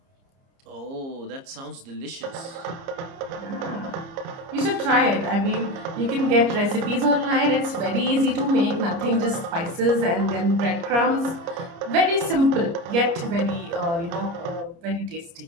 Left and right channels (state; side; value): late; left; 30 ms